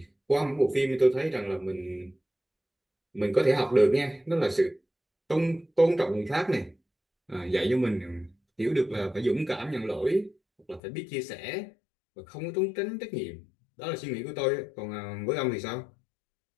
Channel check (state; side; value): drops out; right; at 10.8 s